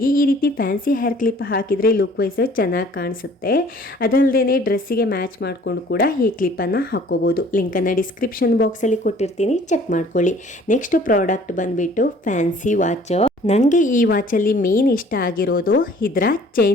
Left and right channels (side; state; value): both; normal; correlation 0.53